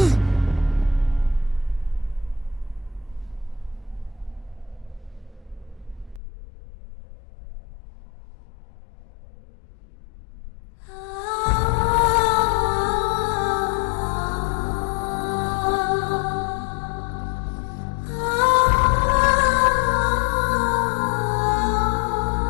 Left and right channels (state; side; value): drops out; right; at 6.2 s